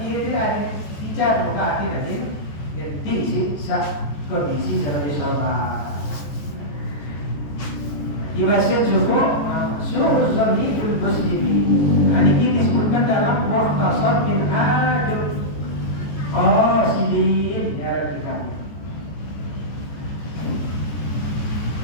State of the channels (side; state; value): right; late; 14 ms